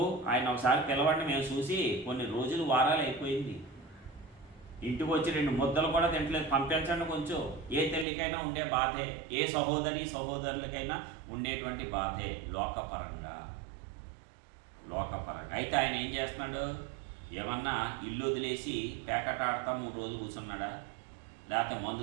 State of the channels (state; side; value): drops out; left; at 8.1 s